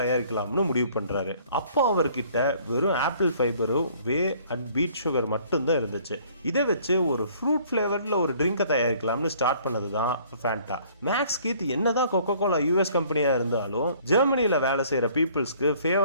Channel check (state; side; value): inverted; both; correlation -0.57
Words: தயாரிக்கலாம்னு முடிவு பண்றாரு. அப்போ அவர்கிட்ட வெறும் ஆப்பிள் ஃபைபரும் வே அண்ட் பீட் சுகர் மட்டும்தான் இருந்துச்சு. இதை வச்சு ஒரு ஃப்ரூட் ஃபிளேவர்ல ஒரு ட்ரிங்கை தயாரிக்கலாம்னு ஸ்டார்ட் பண்ணதுதான் ஃபேண்டா. மேக்ஸ் கீத் என்னதான் கொக்கோ கோலா யூஎஸ் கம்பெனியா இருந்தாலும் ஜெர்மனியில வேலை செய்யற பீப்புள்ஸ்க்கு